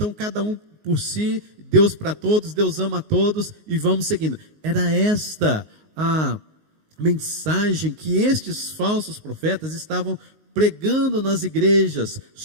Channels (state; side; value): late; left; 19 ms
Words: cada um por si, Deus para todos, Deus ama a todos e vamos seguindo. Era esta a mensagem que estes falsos profetas estavam pregando nas igrejas